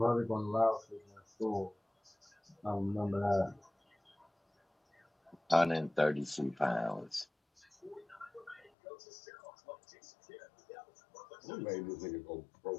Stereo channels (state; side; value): drops out; right; at 8.7 s